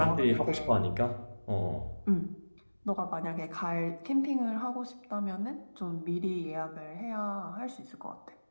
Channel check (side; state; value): both; inverted; correlation -1.00